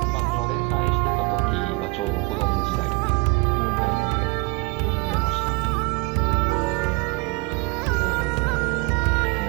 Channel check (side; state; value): left; quieter; 27.4 dB